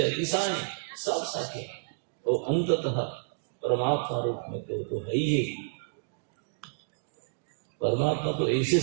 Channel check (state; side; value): silent; left; digital silence